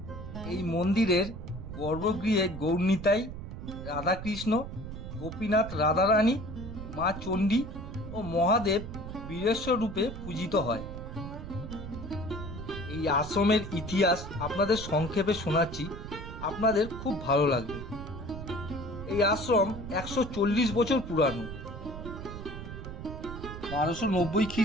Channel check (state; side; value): noise; right; rumble, 9 dB below the sound